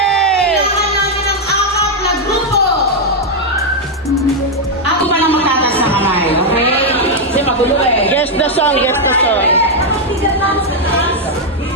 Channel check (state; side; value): normal; both; correlation 0.00